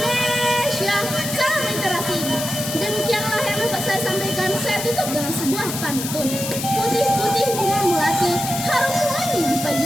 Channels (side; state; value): left; noise; hiss, 5 dB below the sound